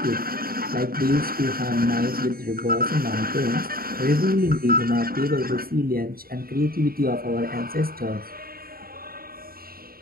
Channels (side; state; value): left; late; 0.43 ms